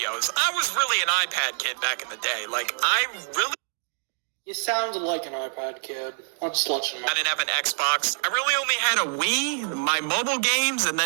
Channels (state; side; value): silent; left; 61 dB below the other